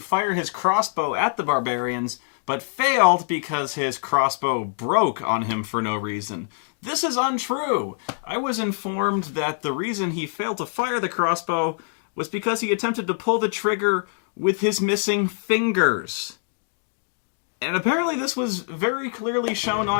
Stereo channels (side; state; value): right; silent; digital silence